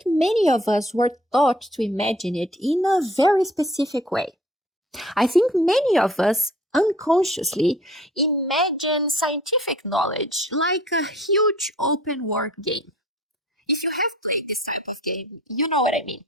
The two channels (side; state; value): both; normal; correlation 0.52